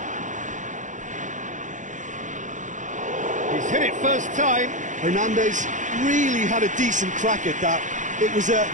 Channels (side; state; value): left; late; 0.36 ms